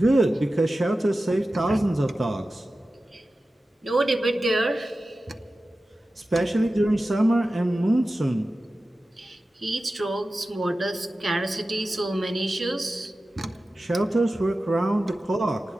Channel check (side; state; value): both; normal; correlation 0.94